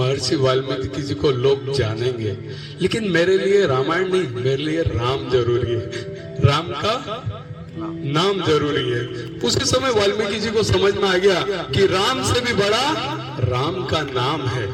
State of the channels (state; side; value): identical; both; correlation 1.00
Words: वाल्मीकि जी को लोग जानेंगे, लेकिन मेरे लिए रामायण नहीं, मेरे लिए राम जरूरी है, राम का नाम जरूरी है। उसी समय वाल्मीकि जी को समझ में आ गया कि राम से भी बड़ा राम का नाम है।